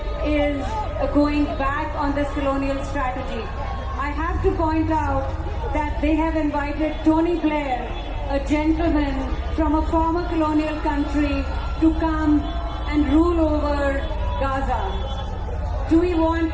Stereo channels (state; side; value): identical; both; correlation 1.00